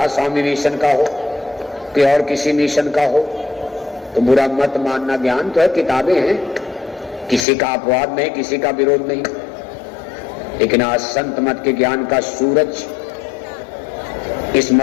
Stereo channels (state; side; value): drops out; right; at 7.5 s